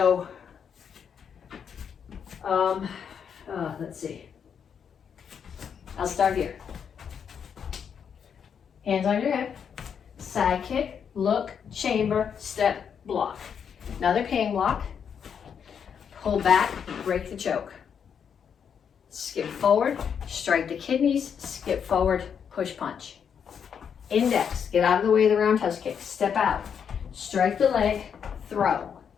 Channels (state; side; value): quieter; right; 7.4 dB